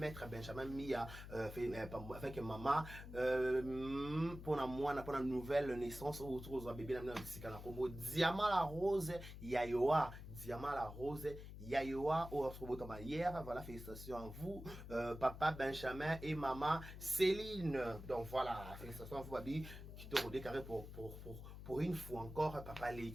Benjamin Mia, avec maman, pour la nouvelle naissance, autour de bébé, Diamant la rose, Yayoa, Diamant la rose, Yayoa, hier, voilà, félicitations à vous, papa Benjamin et maman Céline. Donc voilà, félicitations à vous, Babi, qui te redécaré pour une fois encore, papa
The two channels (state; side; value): noise; left; hum, 11 dB below the sound